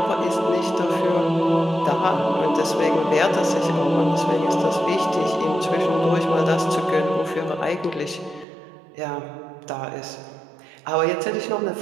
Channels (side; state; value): left; drops out; at 8.5 s